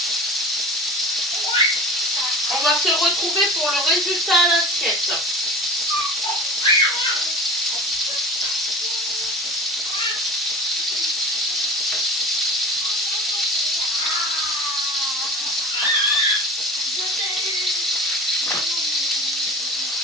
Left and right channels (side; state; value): both; normal; correlation 0.36